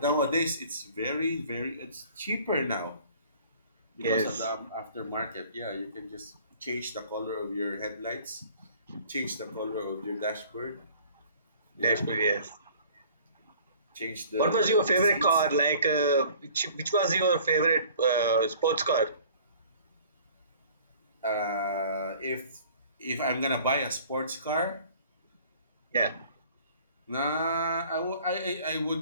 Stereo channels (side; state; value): both; inverted; correlation -0.51